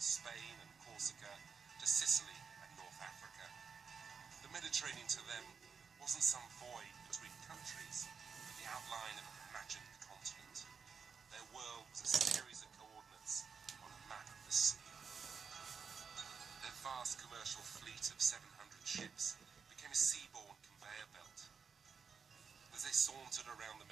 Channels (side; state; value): left; quieter; 5.9 dB